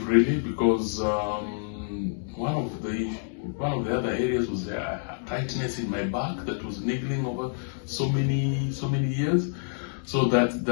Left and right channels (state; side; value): silent; right; digital silence